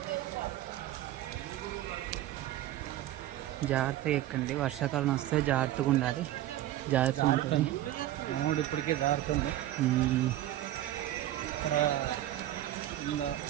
జాగ్రత్తగా ఎక్కండి, వర్షాకాలం వస్తే జాగ్రత్తగా ఉండాలి. జాగ్రత్తగా ఉంటుంది. మనోడు ఇప్పటికే జారుతుంది. ఇక్కడ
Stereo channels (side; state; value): left; quieter; 13.8 dB